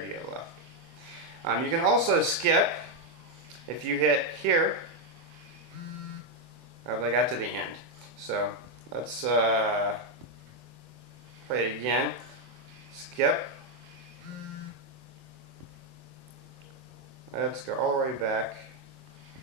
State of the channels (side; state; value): left; late; 24 ms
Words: do you have left. You can also skip. If you hit here, I got to the end. So let's play it again. Skip. Let's go all the way back.